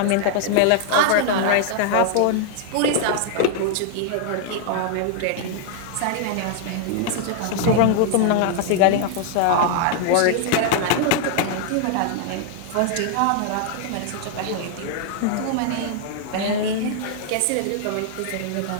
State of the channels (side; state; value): both; different; correlation 0.00